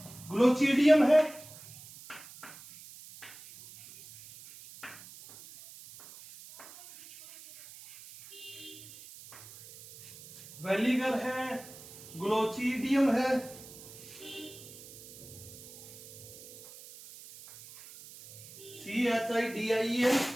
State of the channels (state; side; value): noise; right; hiss, 18 dB below the sound